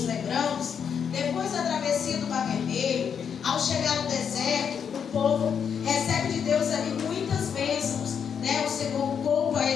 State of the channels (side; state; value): right; quieter; 7.3 dB